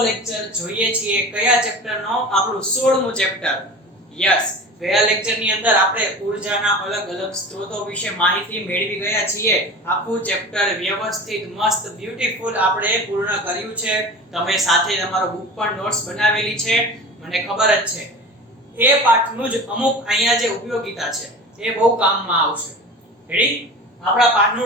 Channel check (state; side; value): normal; both; correlation 0.35